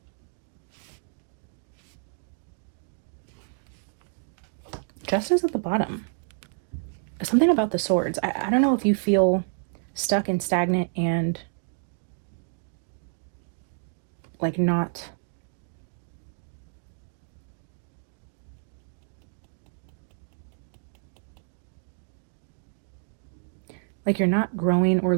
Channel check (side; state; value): left; silent; 58 dB below the other